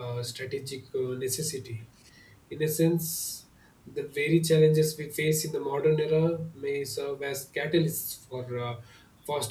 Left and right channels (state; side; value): identical; both; correlation 1.00